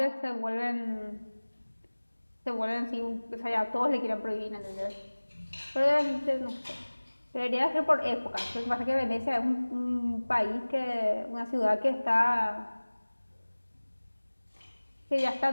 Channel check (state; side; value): inverted; both; correlation -1.00